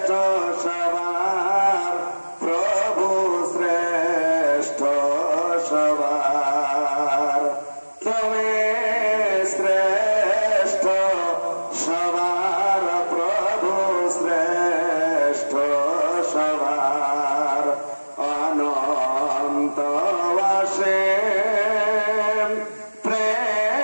সবার প্রভু শ্রেষ্ঠ সবার তুমি শ্রেষ্ঠ সবার প্রভু শ্রেষ্ঠ সবার অনন্ত অসীম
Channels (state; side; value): inverted; both; correlation -1.00